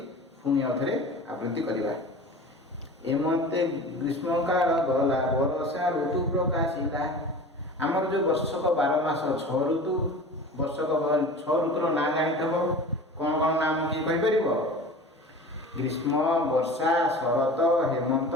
ପୁଣି ଆଉଥରେ ଆବୃତ୍ତି କରିବା। ହେମନ୍ତେ ଗ୍ରୀଷ୍ମକାଳ ଗଲା, ବରଷା ଋତୁ ପ୍ରକାଶିଲା। ଆମର ଯେଉଁ ବର୍ଷକ 12 ମାସ 6 ଋତୁ, ବର୍ଷକ 6 ଋତୁର ନାଁ ଜାଣିଥିବ। କ'ଣ କ'ଣ ନାମ କିଏ କହିପାରିବ? ଗ୍ରୀଷ୍ମ, ବର୍ଷା, ଶରତ, ହେମନ୍ତ,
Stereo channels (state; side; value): normal; both; correlation 0.37